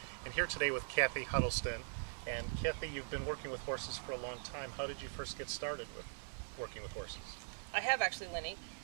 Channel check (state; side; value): silent; left; 50 dB below the other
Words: and here today with Kathy Huddleston. And Kathy, you've been working with horses for a long time. How did you first get started with working with horses? I have actually, Lenny.